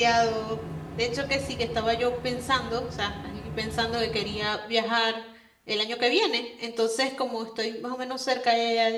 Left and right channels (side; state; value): both; identical; correlation 1.00